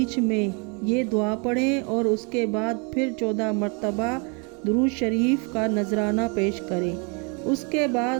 में ये दुआ पढ़ें और उसके बाद फिर 14 मरतबा दुरूद शरीफ का नजराना पेश करें। उसके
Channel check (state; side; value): quieter; left; 34.4 dB